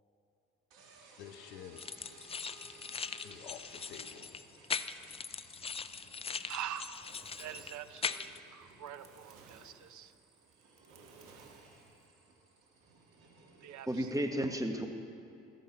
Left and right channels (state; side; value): normal; both; correlation 0.43